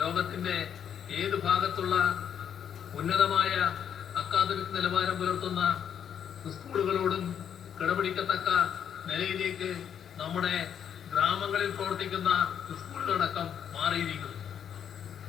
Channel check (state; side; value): quieter; right; 8.6 dB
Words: ലോകത്തിന്റെ ഏത് ഭാഗത്തുള്ള ഉന്നതമായ അക്കാദമിക് നിലവാരം പുലർത്തുന്ന സ്കൂളുകളോടും കിടപിടിക്കത്തക്ക നിലയിലേക്ക് നമ്മുടെ ഗ്രാമങ്ങളിൽ പ്രവർത്തിക്കുന്ന സ്കൂളുകളടക്കം മാറിയിരിക്കുന്നു.